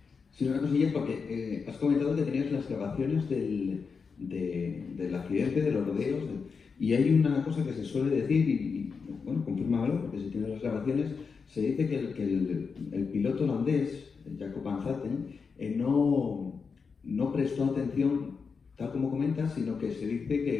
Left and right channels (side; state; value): right; quieter; 5.4 dB